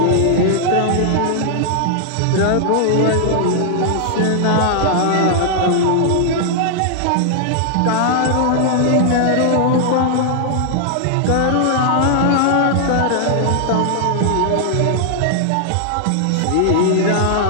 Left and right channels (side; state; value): both; different; correlation -0.01